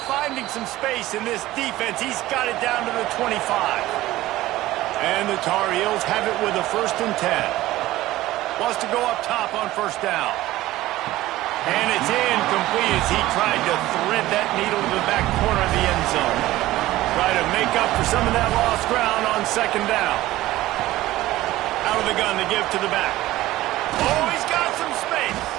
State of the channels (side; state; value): left; quieter; 16.4 dB